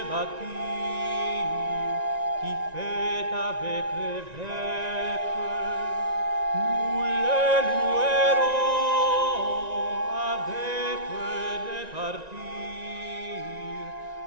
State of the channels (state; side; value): late; left; 1.9 ms